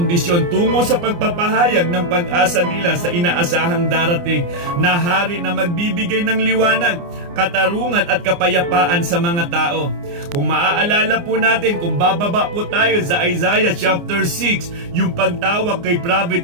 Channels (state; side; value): late; left; 29 ms